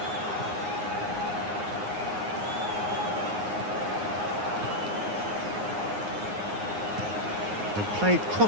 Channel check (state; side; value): late; left; 9.6 ms